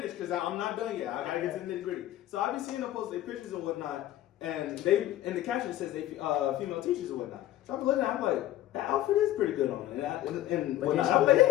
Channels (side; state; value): right; quieter; 13.9 dB